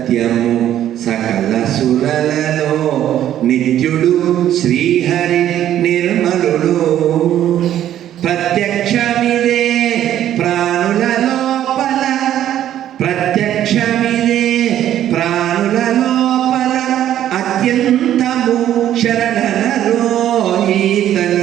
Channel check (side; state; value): left; quieter; 11.5 dB